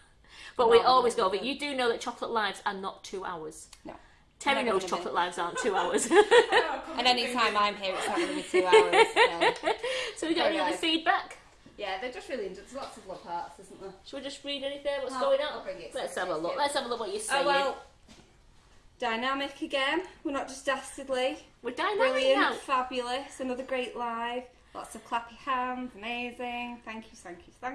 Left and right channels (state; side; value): identical; both; correlation 1.00